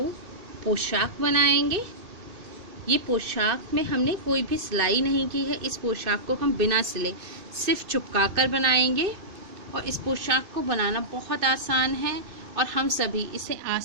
पोशाक बनाएंगे। ये पोशाक में हमने कोई भी सिलाई नहीं की है। इस पोशाक को हम बिना सिले सिर्फ चिपका कर बनाएंगे और इस पोशाक को बनाना बहुत आसान है और हम सभी इसे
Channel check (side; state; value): left; late; 2.5 ms